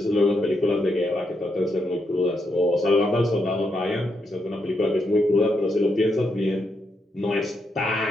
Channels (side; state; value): both; normal; correlation 0.80